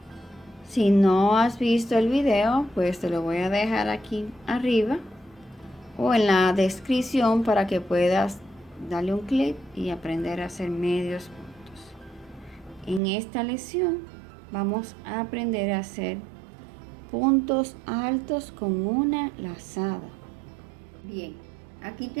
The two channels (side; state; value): left; drops out; at 13.0 s